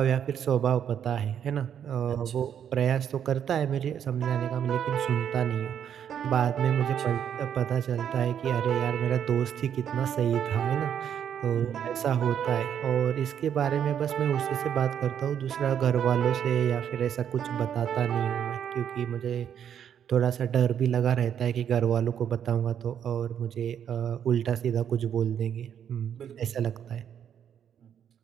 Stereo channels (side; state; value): left; quieter; 8.9 dB